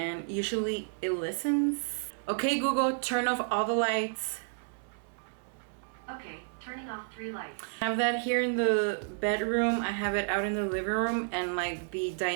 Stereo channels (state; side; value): silent; left; 57 dB below the other